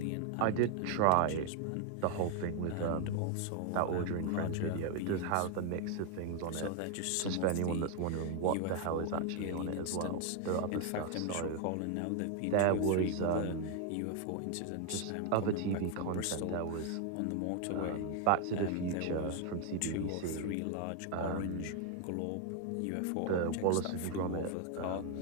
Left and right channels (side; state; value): both; different; correlation 0.01